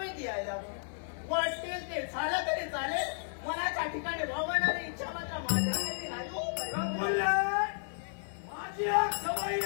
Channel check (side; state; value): right; silent; 56 dB below the other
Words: यायला वाटतील ते झालं तरी चालेल. मनाच्या ठिकाणी भावणारी इच्छा मात्र माझ्यासाठी नाही हो. बोलले, माझी एक सवय